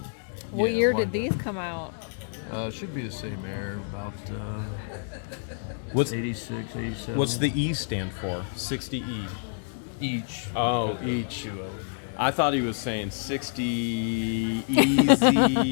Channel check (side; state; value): right; silent; digital silence